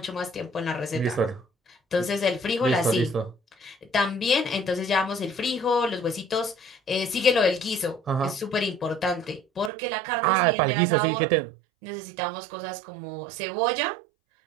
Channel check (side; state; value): left; drops out; at 9.7 s